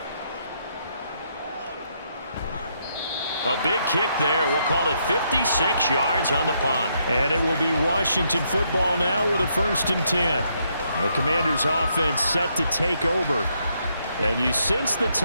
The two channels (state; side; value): inverted; both; correlation -0.76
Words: A big kick there. We'll call it 56 yards on the punt. And it will be Washington football now with a 1st and 10. The Commanders' offense set to take over. And you sense the